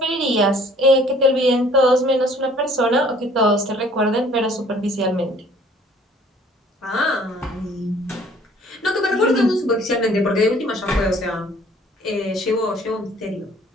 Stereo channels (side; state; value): both; normal; correlation 0.56